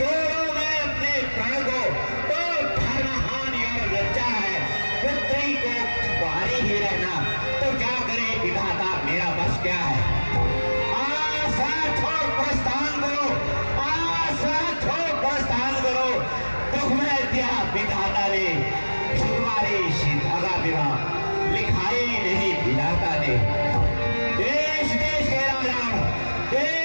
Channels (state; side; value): inverted; both; correlation -1.00